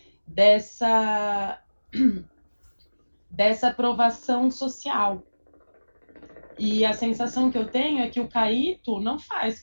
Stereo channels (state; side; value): inverted; both; correlation -1.00